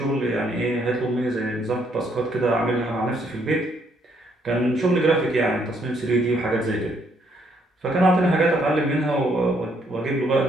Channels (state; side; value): normal; both; correlation 0.70